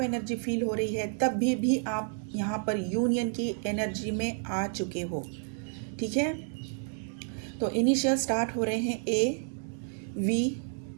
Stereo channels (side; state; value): left; silent; 58 dB below the other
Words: एनर्जी फील हो रही है, तब भी आप यहाँ पर यूनियन की एनर्जी में आ चुके हो। ठीक है, तो इनिशियल स्टार्ट हो रहे हैं A, V,